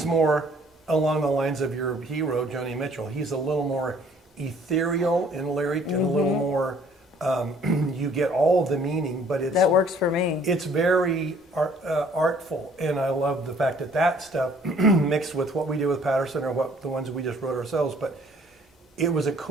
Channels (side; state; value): both; normal; correlation 0.58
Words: more along the lines of your hero, Joni Mitchell. He's a little more ethereal in lyric and a little more, you get all the meaning, but it's That works for me. it's very artful. And I love the fact that that stuff mixed with what we do with Patterson or what the ones we just wrote ourselves. But it was a